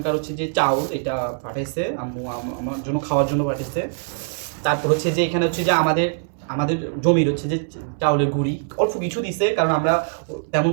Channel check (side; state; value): left; silent; 60 dB below the other